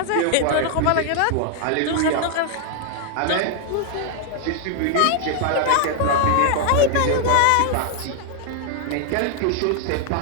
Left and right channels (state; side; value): different; both; correlation 0.00